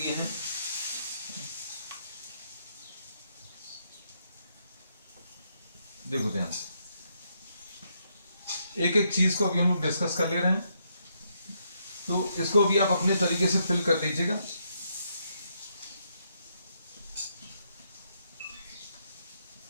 हैं, देखो ध्यान से, एक एक चीज को अभी हम लोग डिस्कस कर ले रहे हैं, तो इसको भी आप अपने तरीके से फिल कर लीजिएगा।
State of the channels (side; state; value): both; inverted; correlation -0.77